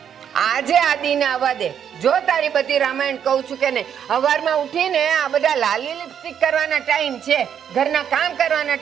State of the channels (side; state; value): left; quieter; 8.6 dB